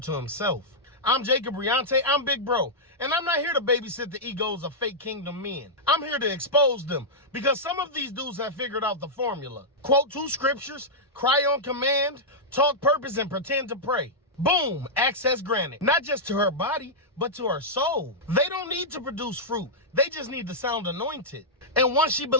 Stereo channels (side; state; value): both; normal; correlation -0.09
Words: himself. I'm Jacob Riante, I'm Big Bro, and I'm not here to babysit the egos of fake kingdom men. I'm here to expose them, because some of these dudes have figured out the formula. Quote 2 scriptures, cry on command, talk purpose, and pretend to pray. Boom, access granted. Not just to her body, but to her soul. They don't need to produce fruit. They just need to sound anointed. And once she